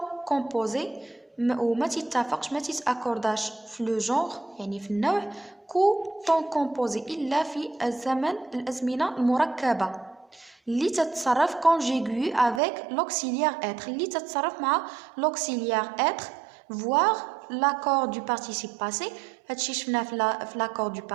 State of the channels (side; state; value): left; drops out; at 12.6 s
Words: composé. وما تتفقش ما تتأكورداش في لو جونغ يعني في النوع كو طون كومبوزي إلا في الأزمنة المركبة اللي تتصرف كونجيغوي افيك لوكسيليير اتر اللي تتصرف مع لوكسيليير اتر فوار لاكور دو بارتيسيب باسي. هادشي شفناه في لاكور دو